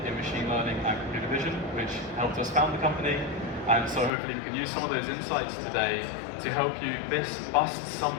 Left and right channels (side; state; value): right; drops out; at 4.1 s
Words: in machine learning and computer vision, which helped us found the company. And so hopefully we can use some of those insights today to help you bust